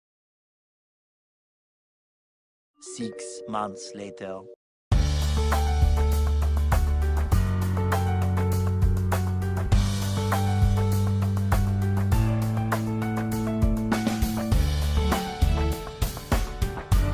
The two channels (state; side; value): identical; both; correlation 1.00